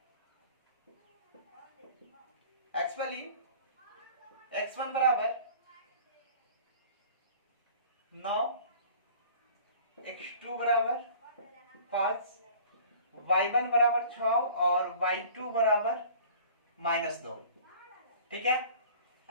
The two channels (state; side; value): inverted; both; correlation -0.47